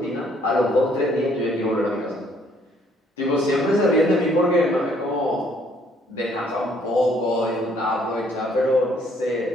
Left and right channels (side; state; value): both; normal; correlation 0.64